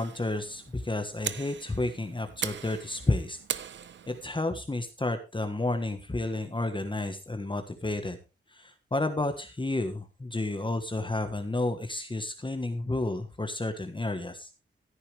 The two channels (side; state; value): both; normal; correlation 0.75